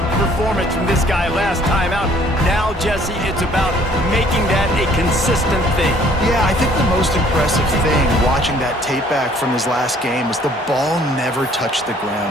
performance from this guy last time out. Now, Jesse, it's about making that a consistent thing. Yeah, I think the most impressive thing watching that tape back from his last game was the ball never touched the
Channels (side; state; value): both; normal; correlation 0.59